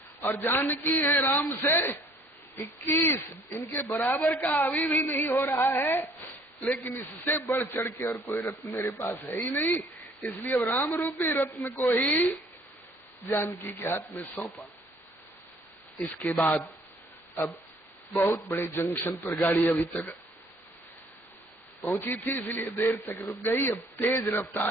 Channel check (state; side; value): normal; both; correlation 0.58